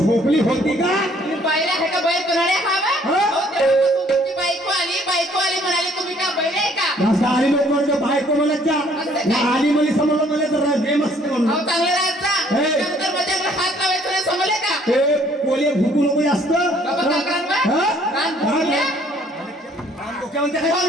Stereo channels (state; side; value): normal; both; correlation 0.61